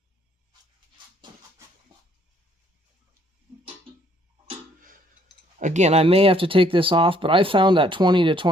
Again, I may have to take this off, but I found that 20 to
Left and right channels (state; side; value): normal; both; correlation 0.65